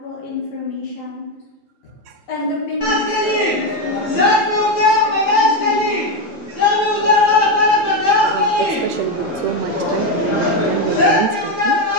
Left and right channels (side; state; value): both; normal; correlation 0.10